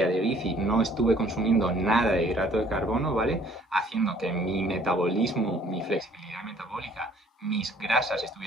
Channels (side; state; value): both; normal; correlation 0.58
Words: de bici no estuve consumiendo nada de hidrato de carbono, ¿vale? Haciendo que mi metabolismo, mi flexibilidad metabólica, mis grasas